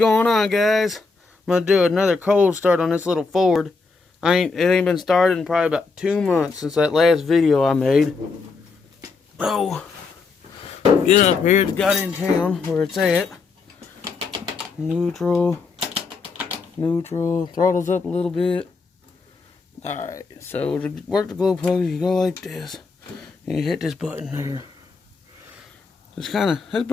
on, guys? I'm gonna do another cold start on this little Ford. It ain't been started in probably about 2 months since that last video I made. Oh, get up here. It's got in town where it's at. Neutral. Throttles up a little bit. Alright, so to work the glow plug, you go like this. And you hit this button here. It's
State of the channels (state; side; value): quieter; right; 4.4 dB